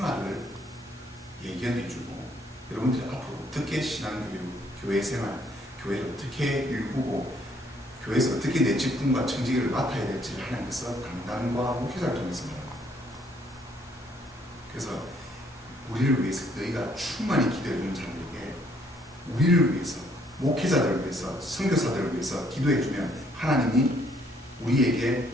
예견해 주고, 여러분들이 앞으로 어떻게 신앙교육, 교회 생활, 교회를 어떻게 일구고 교회에서 어떻게 내 직분과 청지기를 맡아야 될지를 하나님께서 강단과 목회자를 통해서 말합니다. 그래서 우리를 위해서, 너희가 충만히 기도해 주는 자들에게 우리를 위해서, 목회자들을 위해서, 선교사들을 위해서 기도해 주면 하나님이 우리에게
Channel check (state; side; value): normal; both; correlation 0.66